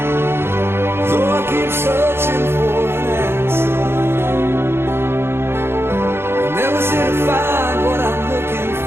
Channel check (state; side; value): late; left; 0.11 ms